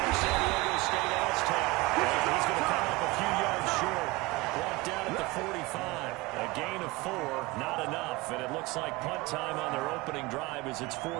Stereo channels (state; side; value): quieter; left; 22.2 dB